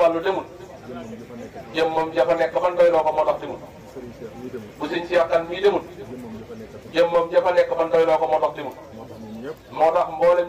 demul jëmmam jafa nekk ban doyloo ko moo tax demul bu sëñ Cheikh Kane mii demul jëmmam jafa nekk ban doyloo ko moo tax demul moo tax mboolem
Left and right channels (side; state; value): both; identical; correlation 1.00